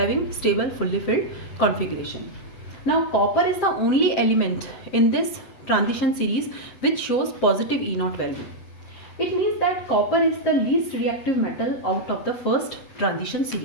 stable fully filled configuration. Now copper is the only element in this transition series which shows positive E0 value. It means that copper is the least reactive metal out of the first transition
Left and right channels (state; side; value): late; right; 8.0 ms